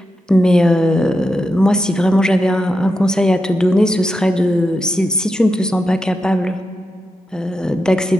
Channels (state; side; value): normal; both; correlation 0.87